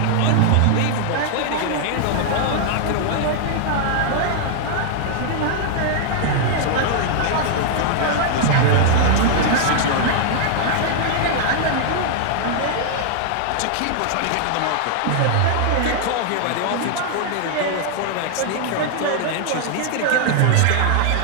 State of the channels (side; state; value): both; different; correlation -0.01